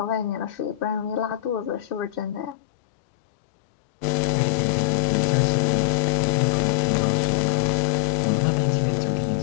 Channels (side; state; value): right; drops out; at 2.6 s